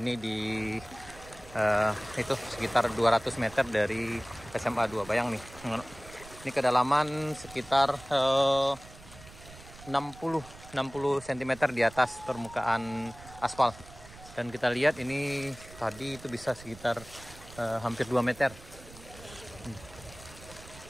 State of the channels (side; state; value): right; noise; rumble, 19 dB below the sound